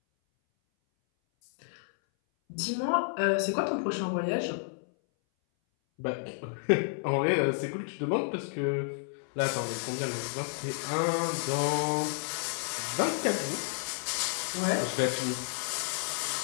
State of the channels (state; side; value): silent; right; 57 dB below the other